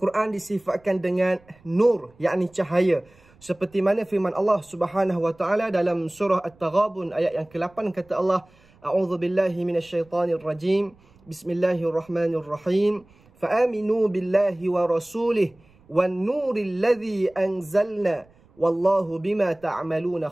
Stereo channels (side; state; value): right; noise; rumble, 30 dB below the sound